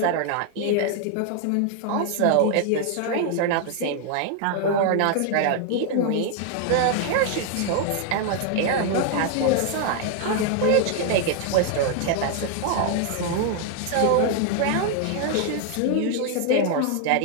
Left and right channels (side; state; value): both; different; correlation 0.00